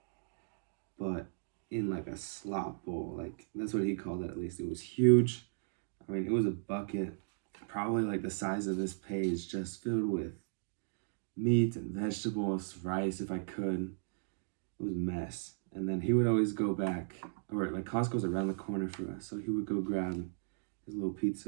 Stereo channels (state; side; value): silent; left; digital silence